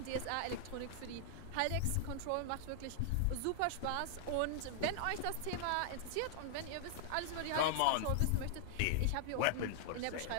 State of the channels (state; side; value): different; both; correlation -0.01